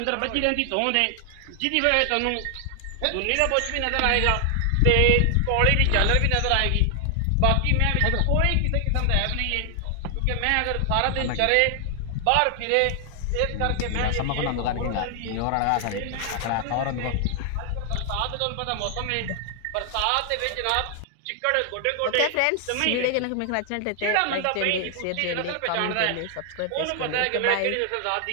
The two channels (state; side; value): different; both; correlation 0.00